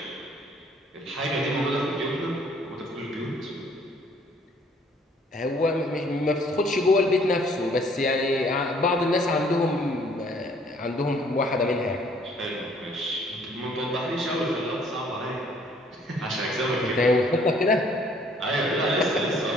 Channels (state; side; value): normal; both; correlation 0.60